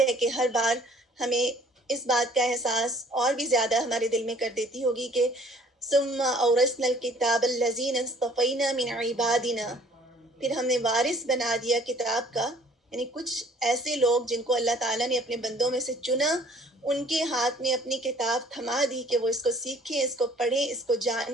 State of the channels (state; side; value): normal; both; correlation 0.56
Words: کہ ہر بار ہمیں اس بات کا احساس اور بھی زیادہ ہمارے دل میں کر دیتی ہوگی کہ ثم اورثنا الکتاب الذین اصطفینا من عبادنا، پھر ہم نے وارث بنا دیا کتاب کا، یعنی کچھ ایسے لوگ جن کو اللہ تعالیٰ نے اپنے بندوں میں سے چنا، ان کے ہاتھ میں اپنی کتاب تھما دی کہ وہ اس کو سیکھیں، اس کو پڑھیں، اس کو